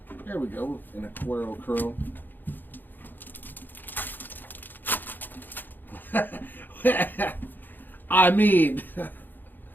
There we go. An Aquaro chrome.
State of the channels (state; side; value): late; right; 0.090 ms